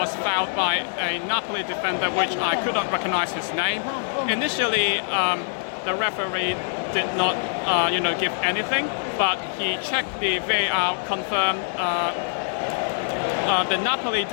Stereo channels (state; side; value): silent; right; 56 dB below the other